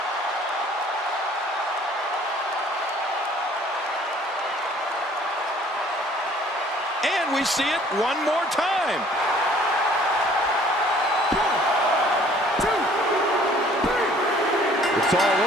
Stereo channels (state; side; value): normal; both; correlation 0.56